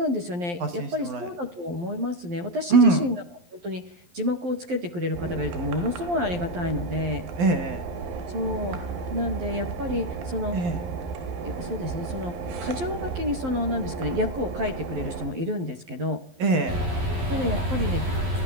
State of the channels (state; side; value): late; left; 11 ms